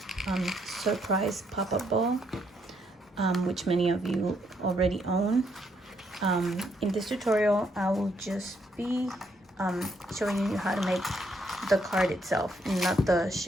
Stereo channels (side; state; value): both; normal; correlation 0.73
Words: surprise pop-up ball, which many of you already own. In this tutorial, I will just be showing you how to make the card itself, not the